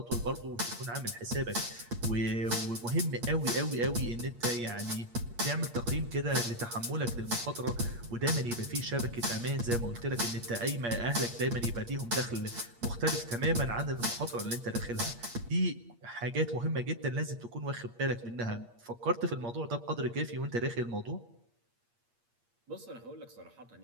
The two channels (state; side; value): late; left; 8.5 ms